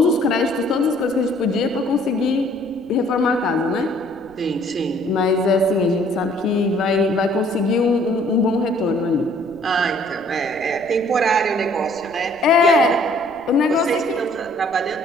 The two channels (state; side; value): noise; right; rumble, 28 dB below the sound